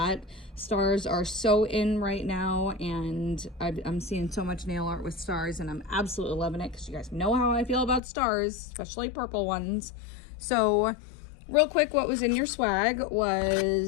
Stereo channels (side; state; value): right; drops out; at 8.0 s